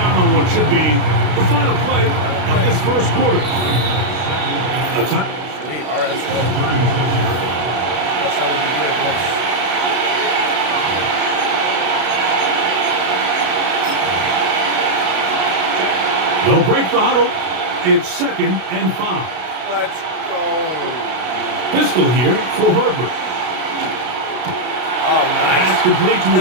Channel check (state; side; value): late; left; 33 ms